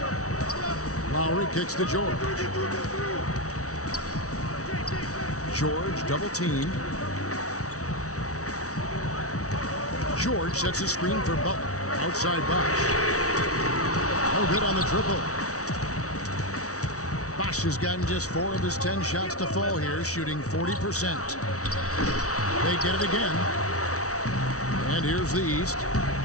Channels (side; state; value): right; late; 0.65 ms